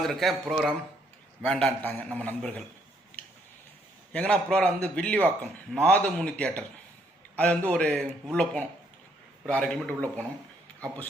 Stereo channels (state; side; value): normal; both; correlation 0.70